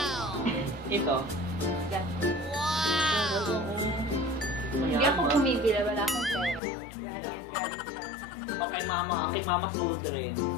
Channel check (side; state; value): right; drops out; at 6.6 s